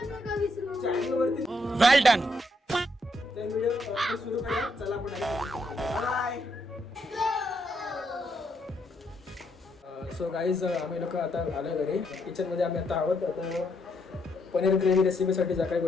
पण नका विसरू. चॅनलवरती वेल डन. तर व्हिडिओ सुरू करूया. चला आपण बाय. सो गाईज, आम्ही लोक आता आलो घरी. किचनमध्ये आम्ही आता आहोत. आता पनीर ग्रेव्ही रेसिपीसाठी ज्या काही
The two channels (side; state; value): both; normal; correlation 0.76